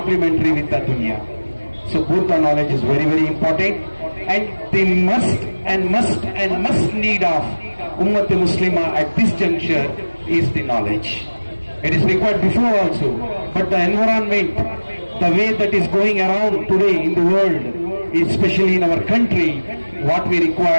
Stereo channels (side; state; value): both; inverted; correlation -1.00